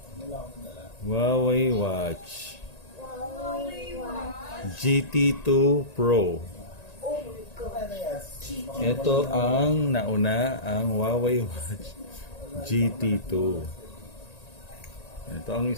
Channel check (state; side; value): late; right; 1.9 ms